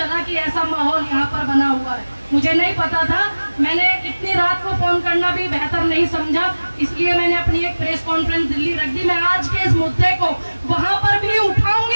कि ऐसा माहौल यहाँ पर बना हुआ है। मुझे नहीं पता था, मैंने इतनी रात को फोन करना भी बेहतर नहीं समझा, इसलिए मैंने अपनी एक प्रेस कॉन्फ्रेंस दिल्ली रख दी। मैं आज के इस मुद्दे को वहां पर भी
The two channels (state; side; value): inverted; both; correlation -1.00